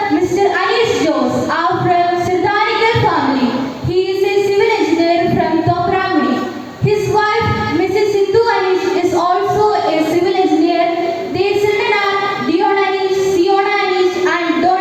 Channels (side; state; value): both; identical; correlation 1.00